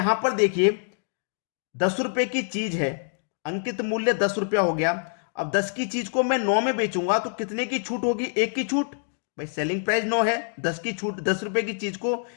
पर देखिए 10 रुपए की चीज है, अंकित मूल्य 10 रुपया हो गया। अब 10 की चीज को मैं 9 में बेचूंगा तो कितने की छूट होगी? 1 की छूट। भाई सेलिंग प्राइस 9 है, 10 की छूट, 10 रुपए की चीज को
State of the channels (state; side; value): silent; right; digital silence